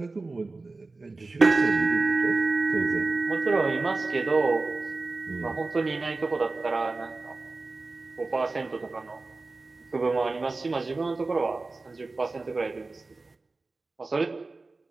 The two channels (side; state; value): left; quieter; 3.5 dB